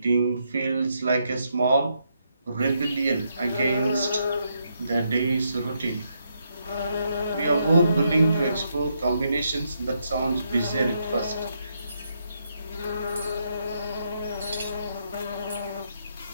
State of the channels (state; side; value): inverted; both; correlation -0.78